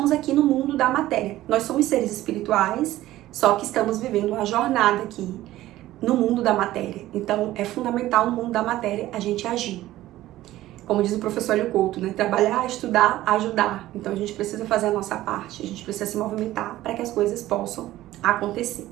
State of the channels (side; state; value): left; quieter; 15.3 dB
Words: aqui no mundo da matéria. Nós somos seres espirituais, só que estamos vivendo uma jornada aqui no mundo da matéria. Então, é fundamental no mundo da matéria a gente agir. Como diz o professor Hélio Couto, né? Trabalhar, estudar, ajudar. Então, a gente precisa fazer a nossa parte, a gente precisa se movimentar para que as coisas possam acontecer.